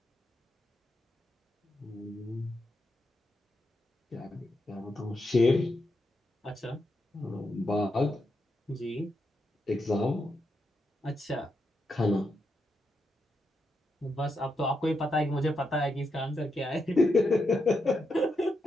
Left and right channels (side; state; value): both; normal; correlation 0.84